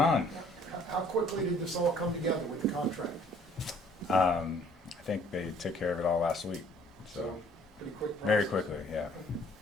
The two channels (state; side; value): normal; both; correlation 0.58